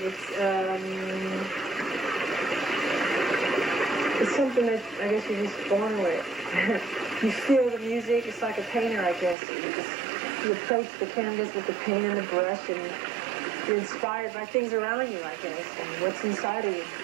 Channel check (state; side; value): drops out; left; at 9.3 s